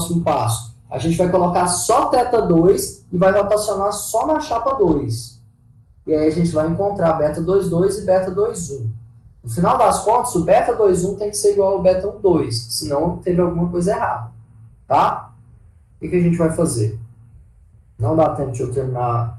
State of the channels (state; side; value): identical; both; correlation 1.00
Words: passo? A gente vai colocar só θ2 e vai rotacionar só na chapa 2. E aí a gente vai encontrar beta 2,2 e beta 2,1. No final das contas, o beta 2,1 tem que ser igual ao beta 1,2, senão teve alguma coisa errada. Tá? O que a gente vai fazer? Não dá tempo de eu terminar